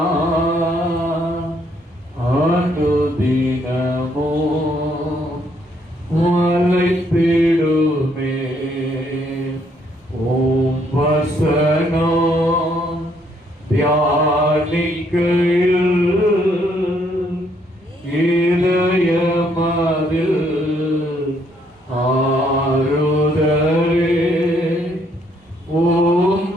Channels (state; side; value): normal; both; correlation 0.70